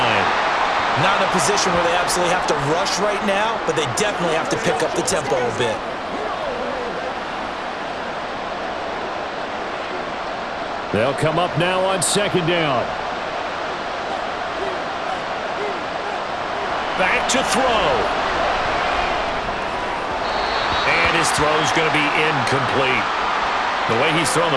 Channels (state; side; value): identical; both; correlation 1.00